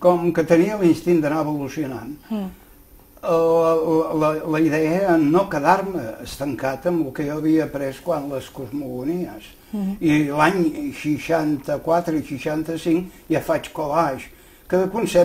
que tenia l'instint d'anar evolucionant, la idea era no quedar-me estancat amb el que jo havia après quan les cosmogonies. I l'any 64 i 65 ja faig collage, cada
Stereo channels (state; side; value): identical; both; correlation 1.00